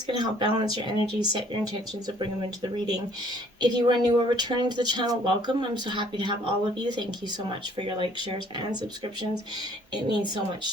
going to help balance your energy, set your intentions, and bring them into the reading. If you are new or returning to the channel, welcome. I'm so happy to have all of you. Thank you so much for your likes, shares, and subscriptions. It means so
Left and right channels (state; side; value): normal; both; correlation 0.59